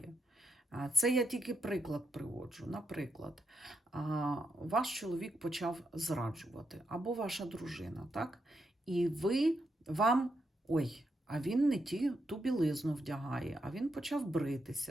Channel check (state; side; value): normal; both; correlation 0.82